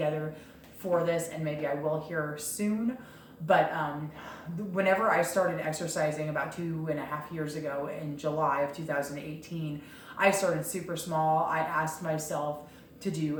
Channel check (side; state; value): both; identical; correlation 1.00